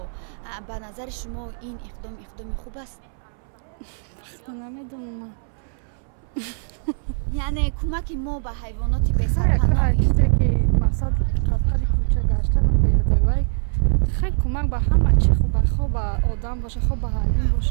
به نظر شما این اقدام خوب است؟ نمیدونم. یعنی کمک ما به حیوانات بسرپناه مقصد قطعی کوچه گشتن بیاده وای خیلی کمک به همه چی خوب به آدم باشه خوب به حیوان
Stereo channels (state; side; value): silent; left; 64 dB below the other